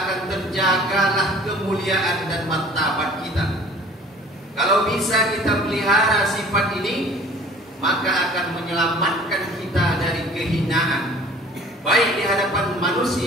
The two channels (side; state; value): both; normal; correlation 0.49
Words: akan terjagalah kemuliaan dan martabat kita. Kalau bisa kita pelihara sifat ini, maka akan menyelamatkan kita dari kehinaan, baik di hadapan